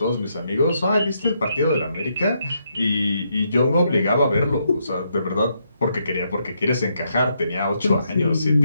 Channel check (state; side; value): inverted; both; correlation -0.77